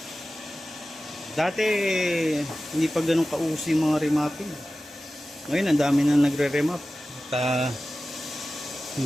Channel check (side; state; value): both; normal; correlation 0.95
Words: Dati hindi pa ganun kauso yung mga remapping. Ngayon ang dami na nagre-remap at